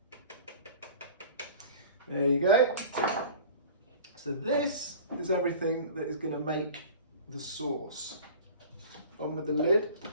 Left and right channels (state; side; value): inverted; both; correlation -0.41